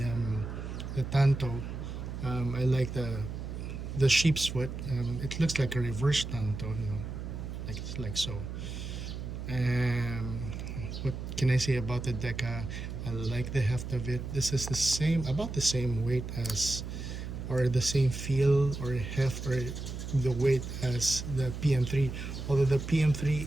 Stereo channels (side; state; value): right; noise; hum, 7 dB below the sound